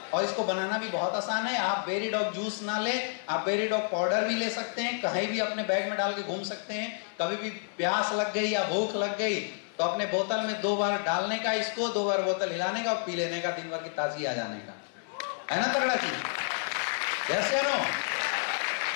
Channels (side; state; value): right; silent; digital silence